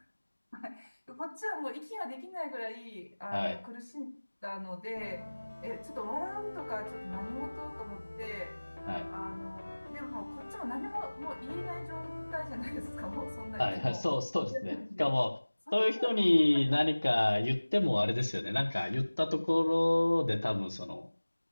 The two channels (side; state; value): both; inverted; correlation -1.00